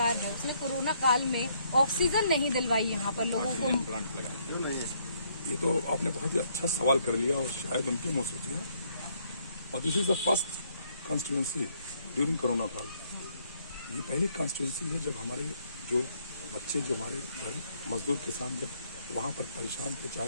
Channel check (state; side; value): inverted; both; correlation -0.69